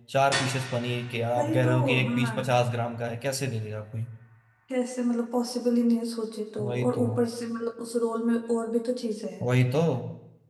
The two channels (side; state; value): both; identical; correlation 1.00